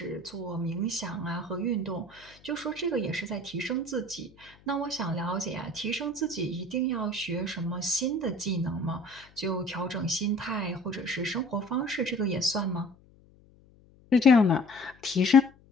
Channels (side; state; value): left; noise; hum, 27 dB below the sound